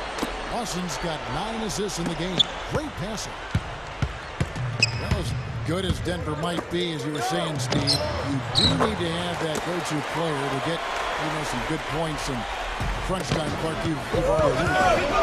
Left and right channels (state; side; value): identical; both; correlation 1.00